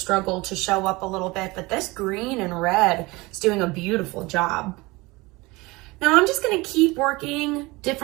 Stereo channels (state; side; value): quieter; left; 22.9 dB